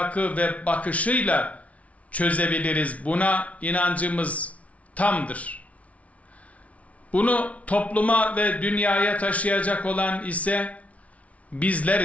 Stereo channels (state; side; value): late; right; 0.066 ms